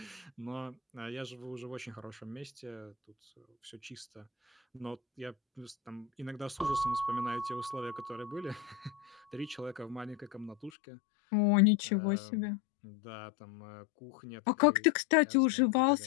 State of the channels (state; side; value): drops out; right; at 10.7 s